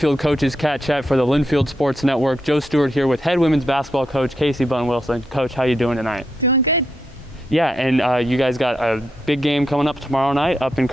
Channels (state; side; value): normal; both; correlation 0.83